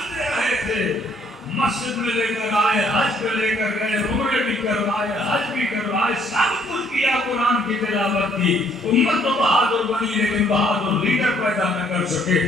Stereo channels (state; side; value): normal; both; correlation 0.65